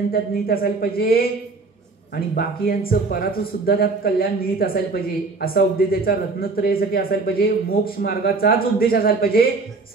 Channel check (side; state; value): left; quieter; 3.9 dB